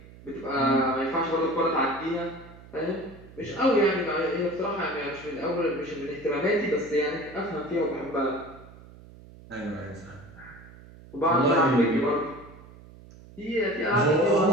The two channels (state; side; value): noise; right; hum, 20 dB below the sound